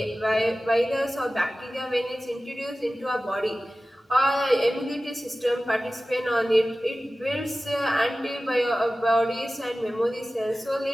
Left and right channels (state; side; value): normal; both; correlation 0.96